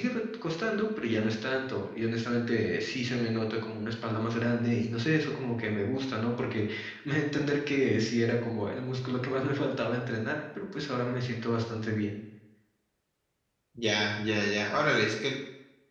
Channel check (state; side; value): identical; both; correlation 1.00